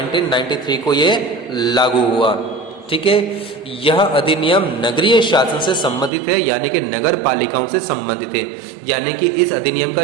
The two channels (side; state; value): left; drops out; at 6.1 s